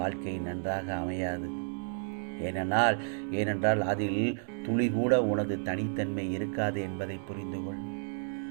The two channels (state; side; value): silent; left; digital silence